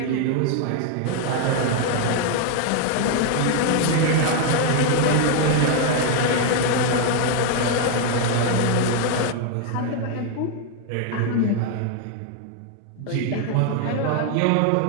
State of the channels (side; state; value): both; different; correlation 0.00